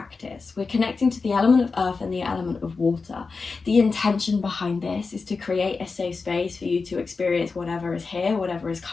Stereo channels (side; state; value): right; quieter; 4.4 dB